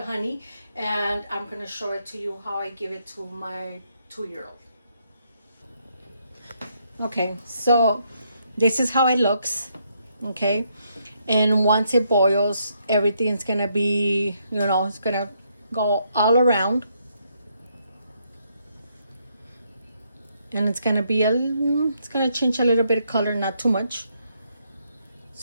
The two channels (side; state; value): both; inverted; correlation -0.75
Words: honey, and I'm gonna show it to you how I give it to my 2-year-old. Okay, so this is how it looks. Okay, and once it boils, everything's gonna be, it's gonna go all around. And it's gonna change a little bit of color, not too much.